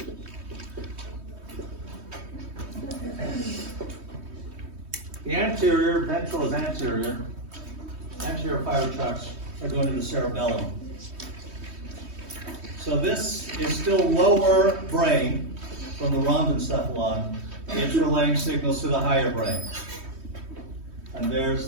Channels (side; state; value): left; late; 3.2 ms